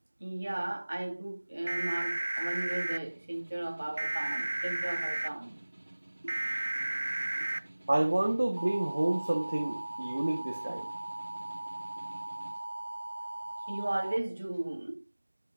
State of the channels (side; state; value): both; inverted; correlation -1.00